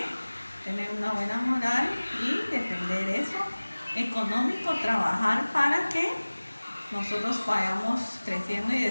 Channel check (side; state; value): both; inverted; correlation -1.00